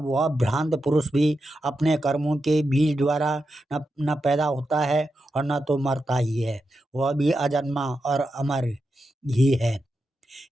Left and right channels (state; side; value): normal; both; correlation 0.88